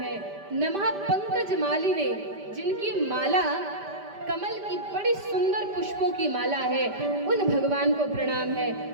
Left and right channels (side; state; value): left; late; 5.1 ms